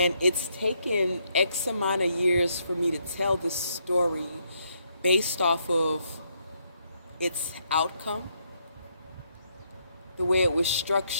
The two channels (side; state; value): both; inverted; correlation -0.75